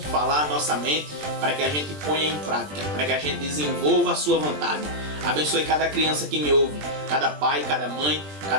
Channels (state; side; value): late; left; 20 ms